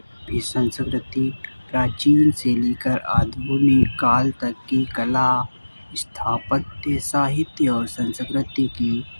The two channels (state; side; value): inverted; both; correlation -1.00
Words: संस्कृति प्राचीन से लेकर आधुनिक काल तक की कला, स्थापत्य, साहित्य और संस्कृति की